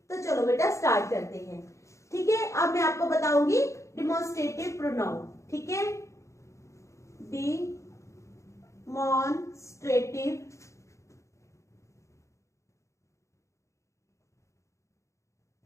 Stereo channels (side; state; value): right; late; 0.15 ms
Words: तो चलो बेटा स्टार्ट करते हैं, ठीक है। अब मैं आपको बताऊंगी डिमॉन्स्ट्रेटिव प्रोनाउन, ठीक है। Demonstrative